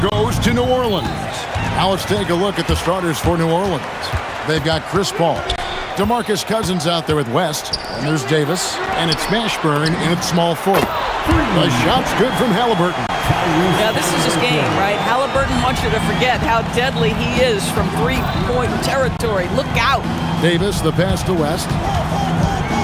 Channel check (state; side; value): identical; both; correlation 1.00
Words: goes to New Orleans. Now let's take a look at the starters for New Orleans. They've got Chris Paul, DeMarcus Cousins out there with West, and there's Davis, and it's Mashburn in at small forward. The shot's good from Halliburton. Yeah, this is his game, right? Halliburton wants you to forget how deadly he is from three-point territory. Look out. Davis, the pass to West.